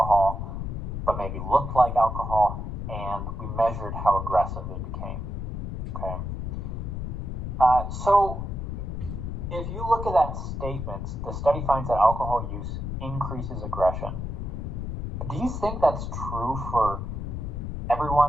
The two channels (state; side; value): noise; left; rumble, 4 dB below the sound